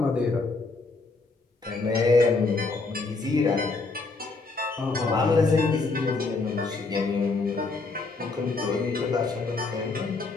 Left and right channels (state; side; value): quieter; right; 3.8 dB